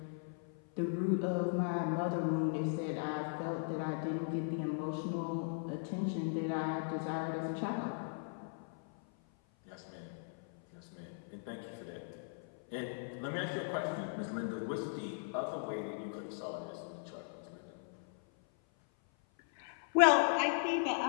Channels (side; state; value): right; silent; 52 dB below the other